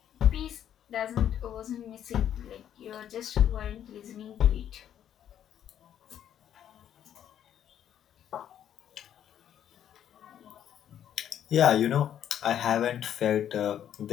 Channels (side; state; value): right; quieter; 10.1 dB